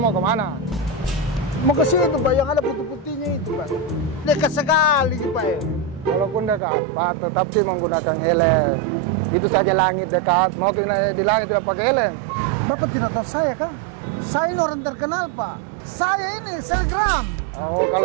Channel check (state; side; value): drops out; left; at 6.6 s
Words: mau kemana? Mau ke situ Pak, yang ada putih-putihnya itu Pak. Dekat sekali Pak ya. Walaupun dekat Pak, tetapi menggunakan helm. Itu saja langit dekat. Mau di langit tidak pakai helm. Bapak tidak tahu saya kan? Saya ini orang terkenal Pak. Saya ini selebgram. Oh,